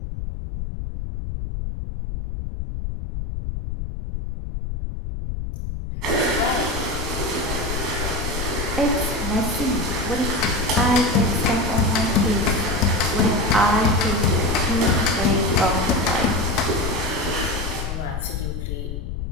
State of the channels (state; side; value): noise; left; rumble, 5 dB below the sound